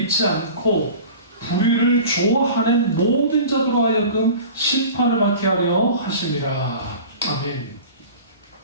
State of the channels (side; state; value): both; inverted; correlation -0.40